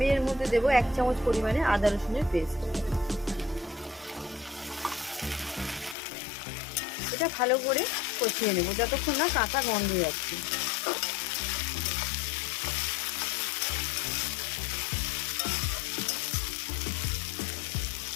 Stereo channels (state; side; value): drops out; right; at 6.0 s